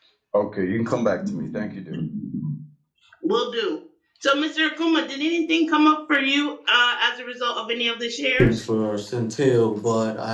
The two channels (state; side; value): identical; both; correlation 1.00